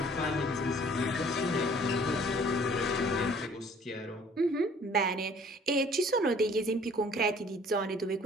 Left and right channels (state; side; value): normal; both; correlation 0.55